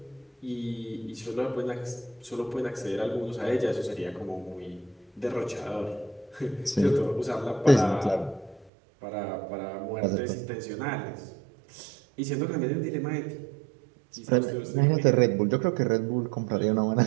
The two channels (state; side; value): drops out; left; at 8.7 s